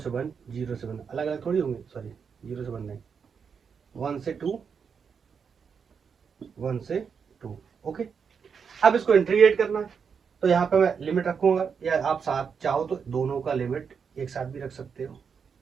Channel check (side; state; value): left; quieter; 6.4 dB